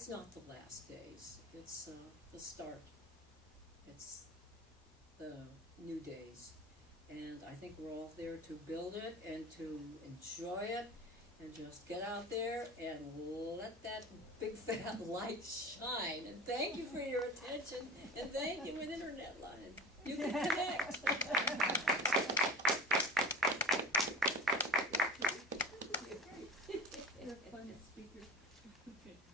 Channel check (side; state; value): both; normal; correlation 0.33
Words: not the last days. It's the start. It's the new days. And I think we're all there to build it and to enjoy it and just get out there and let that big fat light shine. And thank you for your attention, and thank you, an internet line. You can connect. You're a fun speaker.